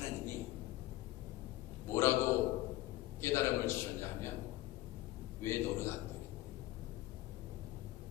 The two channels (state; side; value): quieter; right; 16.6 dB